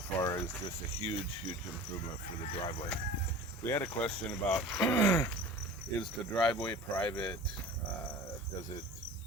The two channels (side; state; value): both; normal; correlation 0.38